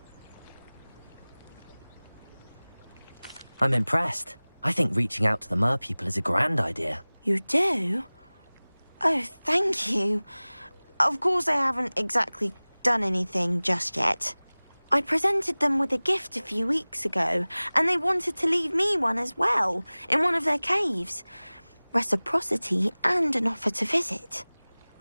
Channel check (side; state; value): both; inverted; correlation -1.00